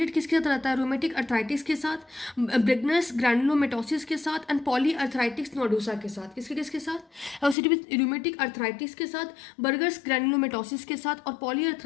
किसके साथ रहता है, रोमेटिक अर्थराइटिस के साथ, ब्रेगनस ग्रैनुलोमेटोसिस के साथ एंड पॉली अर्थराइटिस नोडोसा के साथ। किसके साथ, एसोसिएटेड विथ रोमेटिक अर्थराइटिस के साथ, बर्गर्स ग्रैनुलोमेटोसिस के साथ और पॉली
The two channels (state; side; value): drops out; right; at 7.6 s